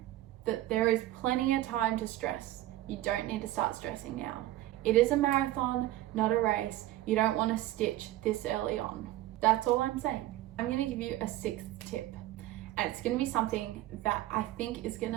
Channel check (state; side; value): quieter; left; 15.3 dB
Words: that there is plenty of time to stress. You don't need to start stressing now. It is a marathon, not a race. You don't want to stitch this early on. That's all I'm saying. I'm going to give you a 6th tip, and it's going to be something that I think is going